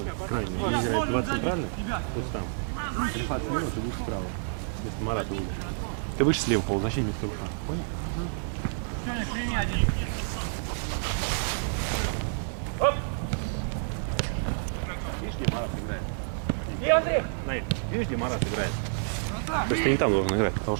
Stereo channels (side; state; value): left; silent; 56 dB below the other